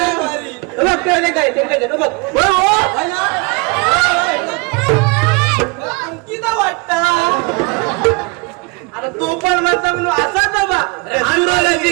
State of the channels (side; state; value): left; quieter; 29.4 dB